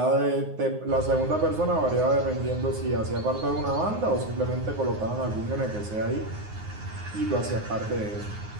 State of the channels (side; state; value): left; late; 9.5 ms